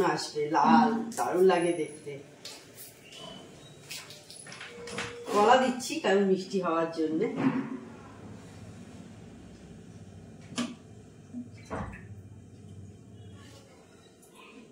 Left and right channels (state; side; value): identical; both; correlation 1.00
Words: আসবে, লাল, দারুণ লাগে দেখতে। কলা দিচ্ছি কারণ মিষ্টি হওয়ার জন্যে।